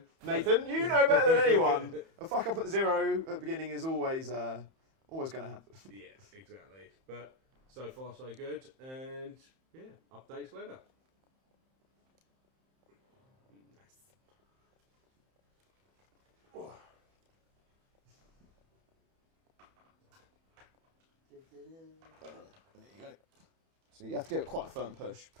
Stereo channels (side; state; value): left; late; 31 ms